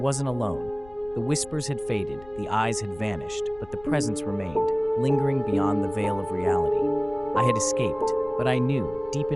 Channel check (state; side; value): noise; left; rumble, 20 dB below the sound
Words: alone. The whispers had faded, the eyes had vanished, but the presence remained, lingering beyond the veil of reality. I had escaped, but I knew, deep